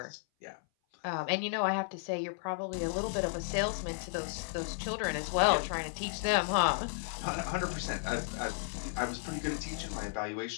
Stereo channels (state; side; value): silent; right; 55 dB below the other